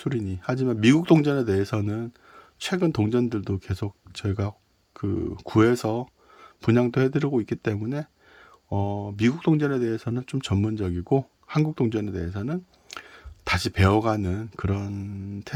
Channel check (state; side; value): identical; both; correlation 1.00